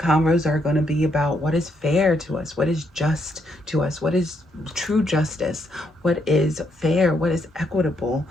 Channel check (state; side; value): normal; both; correlation 0.76